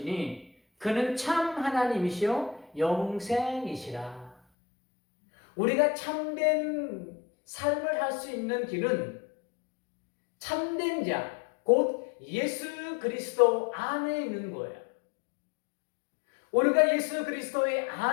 그는 참 하나님이시요 영생이시라. 우리가 참된 삶을 할 수 있는 길은 참된 자, 곧 예수 그리스도 안에 있는 거예요. 우리가 예수 그리스도의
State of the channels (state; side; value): drops out; right; at 4.4 s